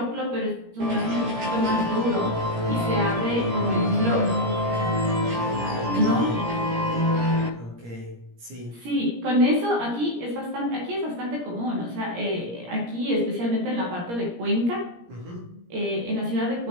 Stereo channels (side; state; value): left; late; 17 ms